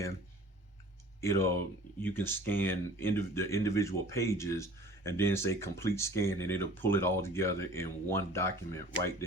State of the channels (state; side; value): normal; both; correlation 0.46